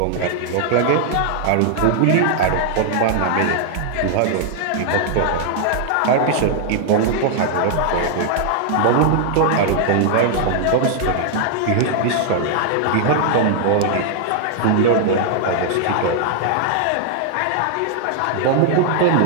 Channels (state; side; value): different; both; correlation 0.00